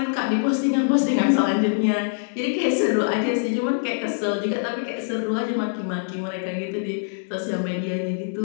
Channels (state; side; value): silent; right; digital silence